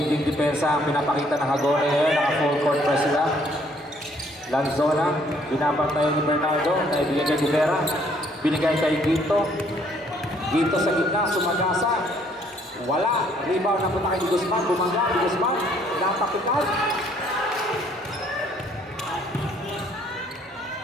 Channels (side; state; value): both; normal; correlation 0.64